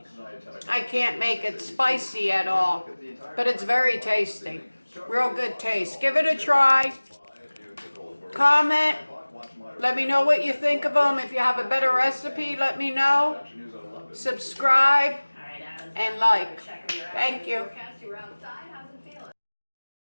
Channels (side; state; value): both; inverted; correlation -1.00